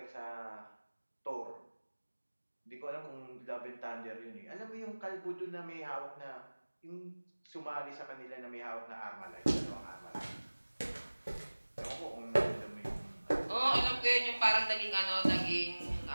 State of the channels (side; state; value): both; inverted; correlation -1.00